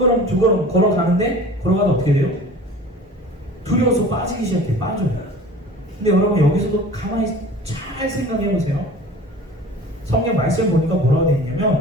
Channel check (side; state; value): both; normal; correlation 0.42